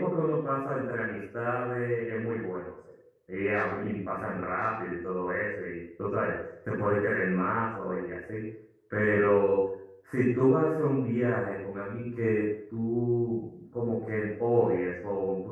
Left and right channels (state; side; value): identical; both; correlation 1.00